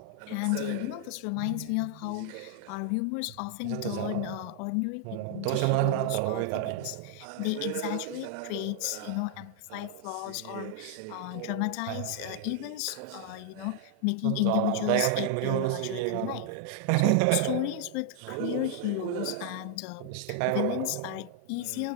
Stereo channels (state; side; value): different; both; correlation 0.00